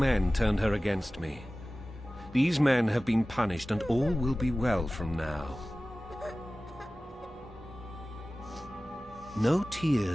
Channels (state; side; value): normal; both; correlation 0.97